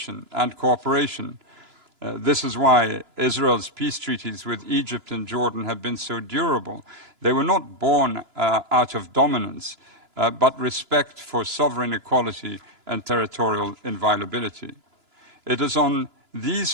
and cooperation. This is why Israel's peace treaties with Egypt and Jordan have been so durable. They were not born out of dominance, but respect for sovereign equality and territorial inviolability. It is on these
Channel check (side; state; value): left; late; 2.9 ms